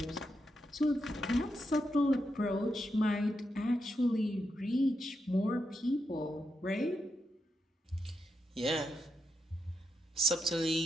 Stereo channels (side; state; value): both; normal; correlation 0.84